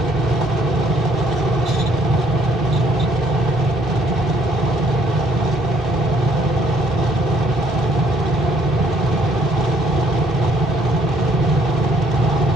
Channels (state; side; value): normal; both; correlation 0.65